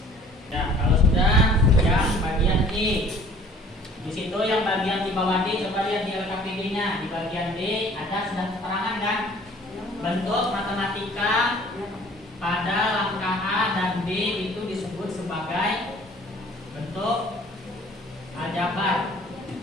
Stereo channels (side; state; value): both; normal; correlation 0.52